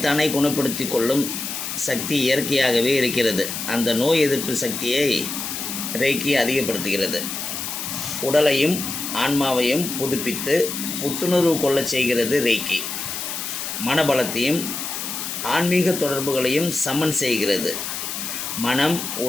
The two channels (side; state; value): left; noise; hiss, 5 dB below the sound